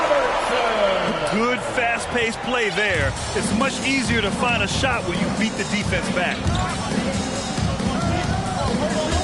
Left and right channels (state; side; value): identical; both; correlation 1.00